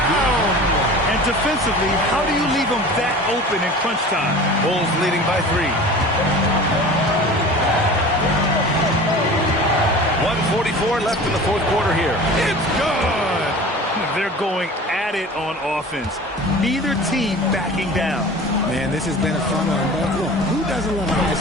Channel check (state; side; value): normal; both; correlation 0.39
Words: And defensively, how do you leave them that open in crunch time? Bulls leading by 3. 1:44 left in the fourth quarter here. It's good. They're going at it on offense. Neither team backing down. Man, this has been a fun one. But look, who doesn't love a